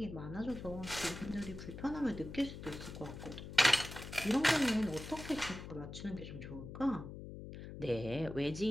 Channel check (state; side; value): noise; left; hum, 10 dB below the sound